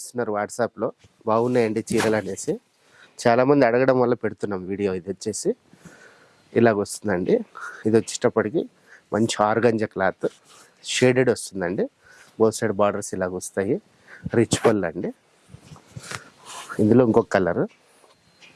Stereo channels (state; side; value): identical; both; correlation 1.00